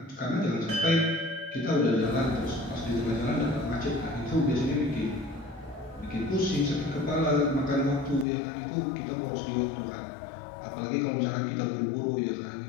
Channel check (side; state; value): right; drops out; at 8.2 s